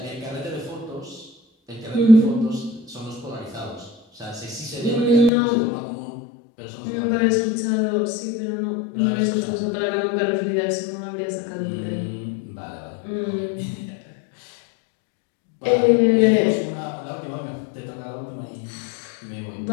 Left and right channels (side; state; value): right; drops out; at 5.3 s